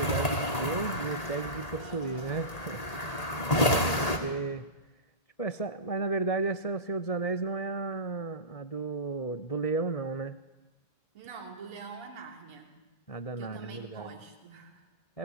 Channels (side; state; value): right; late; 1.8 ms